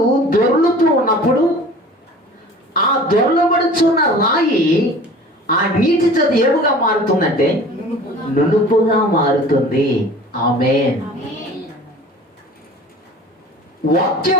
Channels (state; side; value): normal; both; correlation 0.44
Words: దొర్లుతూ ఉన్నప్పుడు ఆ దొర్లబడుచున్న రాయి ఆ నీటి చేత ఏముగా మారుతుందంటే నునుపుగా మారుతుంది. ఆమేన్.